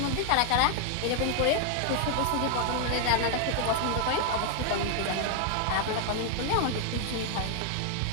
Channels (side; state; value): both; different; correlation 0.00